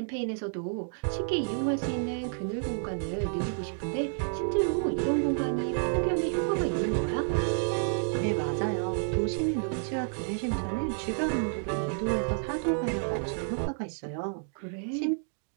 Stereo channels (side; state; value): left; silent; digital silence